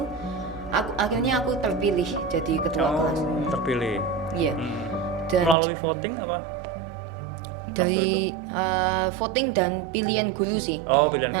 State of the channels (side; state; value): left; drops out; at 5.6 s